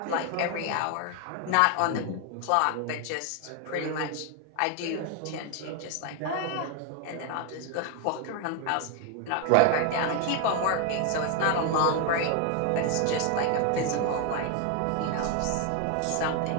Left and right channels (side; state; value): both; different; correlation 0.01